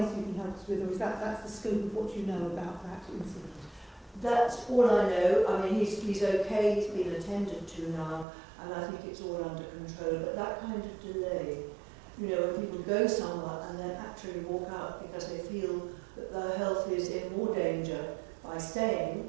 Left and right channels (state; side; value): drops out; left; at 8.2 s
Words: you can help us with, or is that's the scope of what you know about that incident? That's all I know. I mean, he's okay, he's been attended to now, and I think it's all under control. But that kind of delay, you know, when people go somewhere and then actually walk out because they feel that their health is in more danger by staying